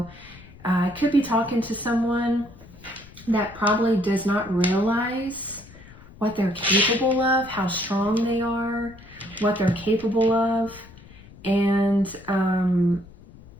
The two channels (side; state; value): left; noise; rumble, 21 dB below the sound